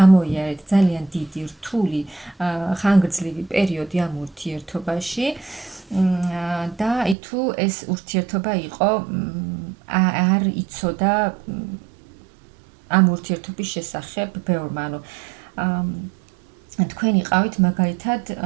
ძალიან დიდი რთული ხანგრძლივი პერიოდი ამ ურთიერთობაში და აი თუ ეს ურთიერთობა იყო არ იცოდა ამ ურთიერთობის შესახებ ბევრმა, ანუ თქვენ იყავით მაგალითად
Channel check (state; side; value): drops out; left; at 7.2 s